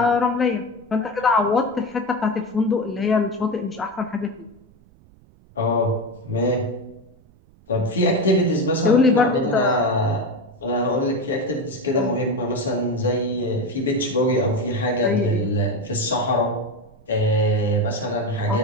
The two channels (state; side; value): noise; right; rumble, 28 dB below the sound